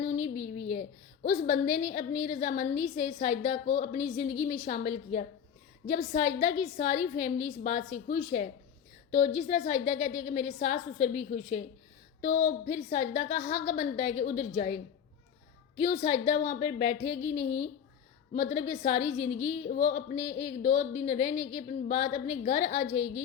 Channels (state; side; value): quieter; right; 8.1 dB